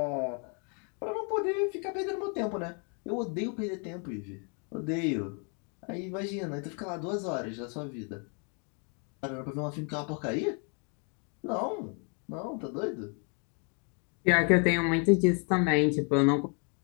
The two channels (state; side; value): quieter; right; 38.2 dB